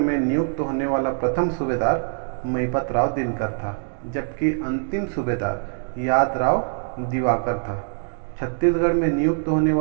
नियुक्त होने वाला प्रथम सूबेदार महिपत राव दिनकर था, जबकि अंतिम सूबेदार यादराव दिवाकर था। छत्तीसगढ़ में नियुक्त होने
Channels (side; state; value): left; silent; digital silence